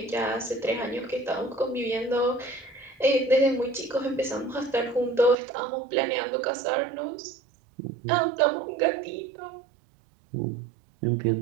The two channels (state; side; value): drops out; left; at 5.4 s